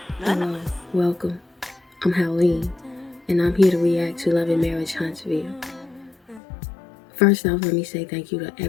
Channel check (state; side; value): drops out; right; at 6.4 s